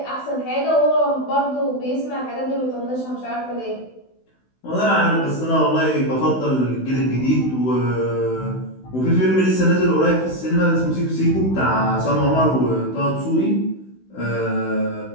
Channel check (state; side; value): late; right; 16 ms